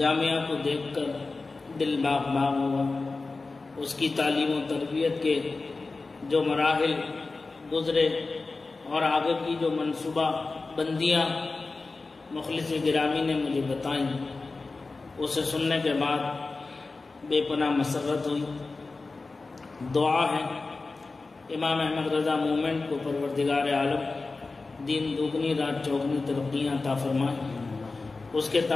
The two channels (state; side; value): quieter; right; 3.7 dB